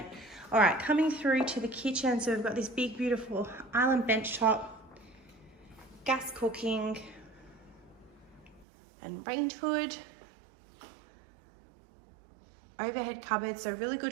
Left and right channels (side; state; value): left; drops out; at 8.7 s